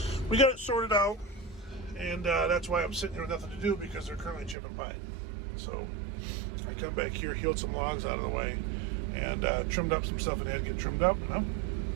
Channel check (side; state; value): left; drops out; at 4.5 s